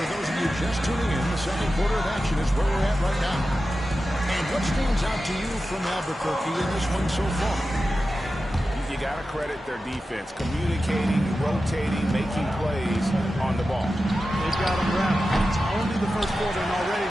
those of you just tuning in, the second quarter of action is where we're at right now. And what stands out to you from Albuquerque in this one so far? You got to credit their defense, communicating, rotating, making plays on the ball. They've got them wrapped. It's only the first quarter, and already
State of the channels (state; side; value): normal; both; correlation 0.93